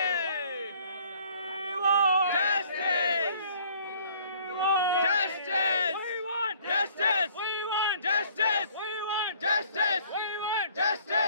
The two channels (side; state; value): both; inverted; correlation -0.57